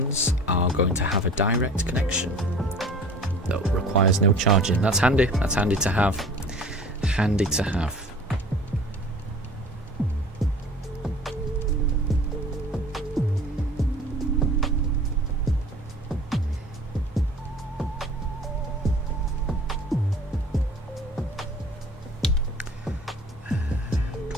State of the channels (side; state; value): both; normal; correlation 0.45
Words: are going to have a direct connection that requires no charging. That's handy to have. Handy to have.